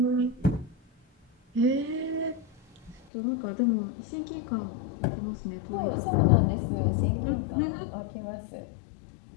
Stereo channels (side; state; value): right; drops out; at 3.1 s